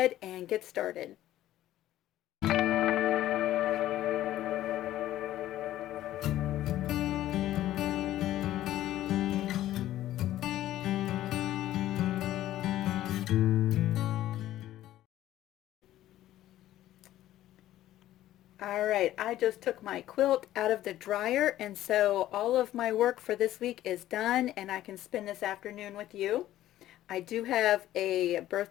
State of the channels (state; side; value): quieter; right; 13.7 dB